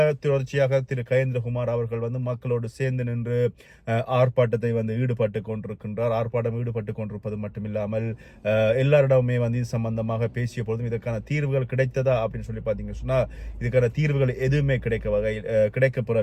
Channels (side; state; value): both; identical; correlation 1.00